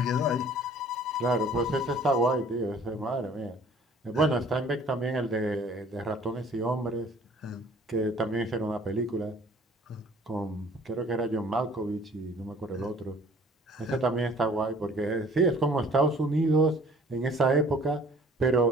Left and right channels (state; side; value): normal; both; correlation 0.53